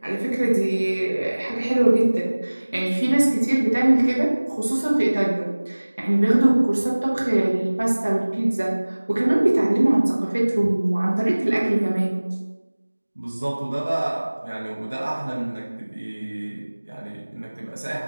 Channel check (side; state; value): both; inverted; correlation -1.00